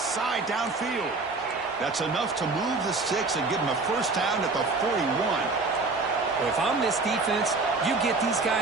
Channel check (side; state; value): left; quieter; 3.7 dB